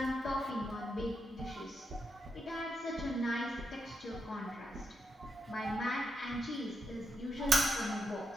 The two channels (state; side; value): normal; both; correlation 0.83